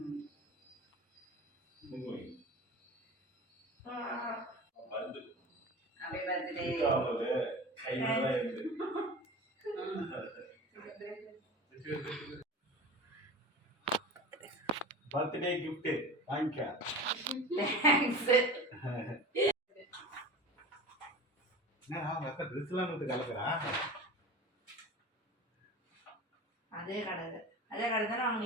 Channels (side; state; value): both; normal; correlation 0.34